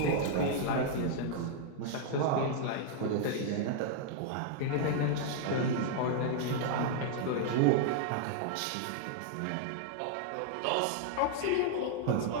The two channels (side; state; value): both; different; correlation -0.01